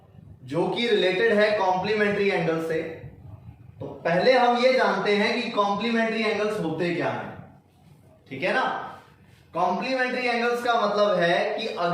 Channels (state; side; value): identical; both; correlation 1.00